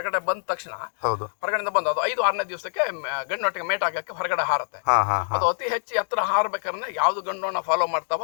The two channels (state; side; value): silent; right; digital silence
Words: ಬಂದ ತಕ್ಷಣ, ಹೊರಗಡೆ ಬಂದು ಅದು 5-6ನೇ ದಿವಸಕ್ಕೆ ಗಂಡೊಟ್ಟಿಗೆ ಮೇಟ್ ಆಗಕ್ಕೆ ಹೊರಗಡೆ ಹಾರತ್ತೆ. ಅದು ಅತಿ ಹೆಚ್ಚು ಎತ್ತರ ಹಾರ್ಬೇಕಾದ್ರೆ ಯಾವ್ದು ಗಂಡೋಣ ಫಾಲೋ ಮಾಡ್ತಾವ